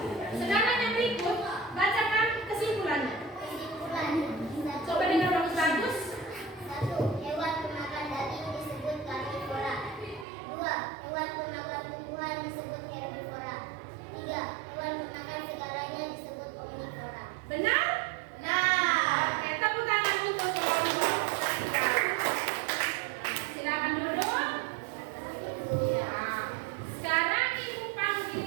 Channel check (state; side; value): drops out; left; at 10.2 s